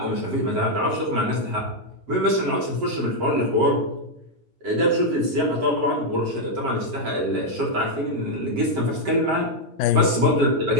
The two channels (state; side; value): late; left; 7.6 ms